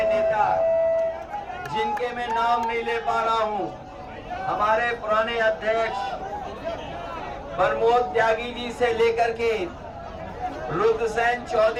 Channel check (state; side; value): identical; both; correlation 1.00